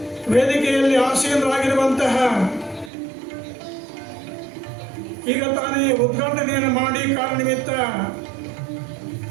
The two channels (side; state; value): left; drops out; at 2.9 s